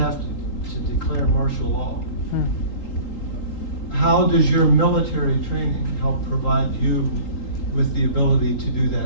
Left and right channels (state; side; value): late; right; 3.8 ms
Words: to declare martial law. How does your military training help provide you with the ability to do